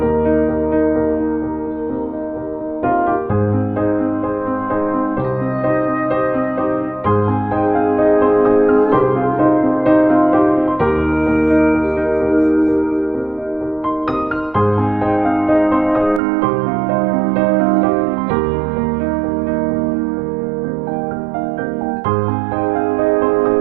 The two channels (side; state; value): left; drops out; at 16.2 s